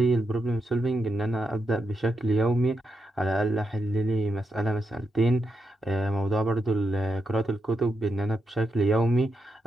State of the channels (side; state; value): both; normal; correlation 0.83